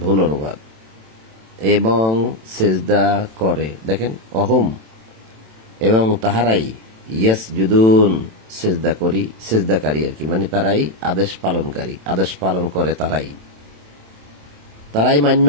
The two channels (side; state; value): left; late; 27 ms